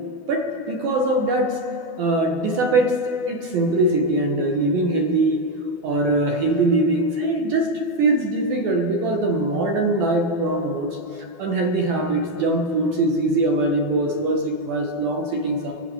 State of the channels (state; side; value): late; left; 12 ms